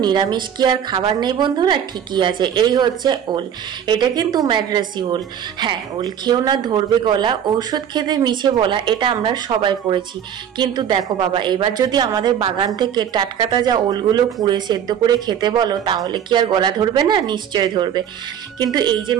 নিরামিষ কি আর খাবার নেই বন্ধুরা? ঠিকই আছে, এই হচ্ছে ওল। এটা কিন্তু ম্যাড্রাসি ওল। হ্যাঁ, ওল খেও না, ধরবে গলা, ঔষধ খেতে মিছে বলা, এটা আমরা সবাই পড়েছি। কিন্তু দেখো বাবা, এবার যদি আমাদের বাগান থেকে টাটকা তাজা ওলগুলো পুড়ে সেদ্ধ করে খেতে বলো, তাহলে কি আর গলা ধরবে না? নিশ্চয় ধরবে। কিন্তু এই যে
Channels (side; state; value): left; quieter; 9.0 dB